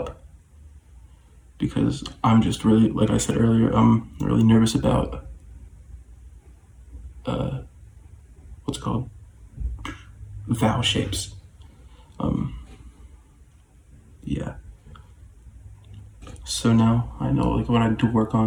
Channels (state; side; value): identical; both; correlation 1.00